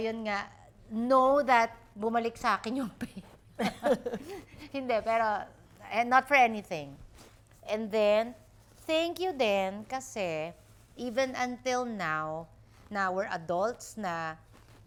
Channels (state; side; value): identical; both; correlation 1.00